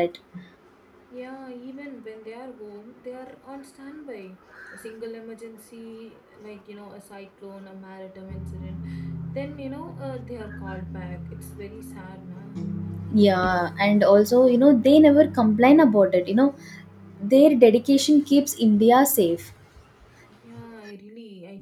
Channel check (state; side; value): identical; both; correlation 1.00